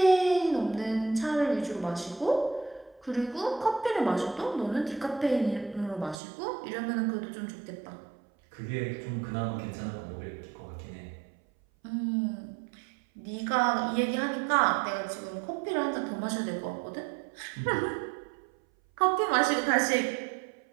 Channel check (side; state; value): left; drops out; at 6.2 s